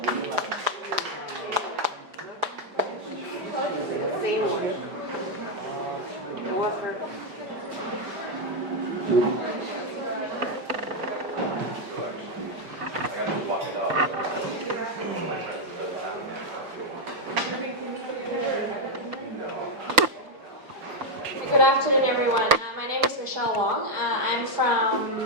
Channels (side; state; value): left; late; 5.4 ms